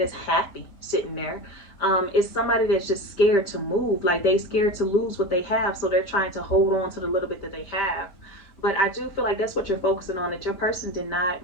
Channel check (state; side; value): late; right; 5.0 ms